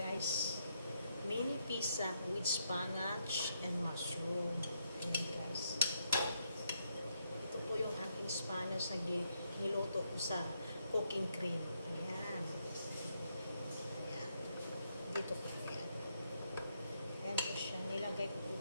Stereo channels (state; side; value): inverted; both; correlation -0.78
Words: Mini pizza with spinach and mushroom. Ayan, guys. Ito po yung aking spinach na niluto ko sa cooking cream. Ayan. Ayan. Dito po. Ayan. Ayan po siya. Nilagay ko po